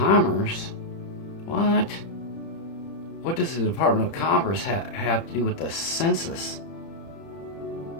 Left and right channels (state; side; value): late; right; 30 ms